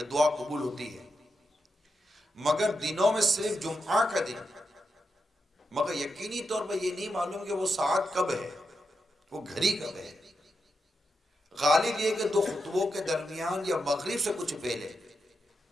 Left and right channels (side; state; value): both; normal; correlation 0.86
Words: دعا قبول ہوتی ہے، مگر دنوں میں صرف جمعہ کا دن، مگر یقینی طور پر یہ نہیں معلوم کہ وہ ساعت کب ہے، وہ گھڑی کب ہے۔ غالب یہ کہ 2 خطبوں کے درمیان یا مغرب سے کچھ پہلے،